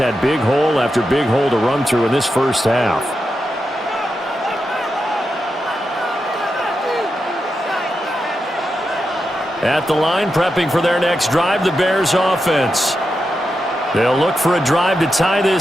big hole after big hole to run through in this first half. At the line, prepping for their next drive, the Bears offense. They'll look for a drive to tie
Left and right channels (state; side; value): normal; both; correlation 0.87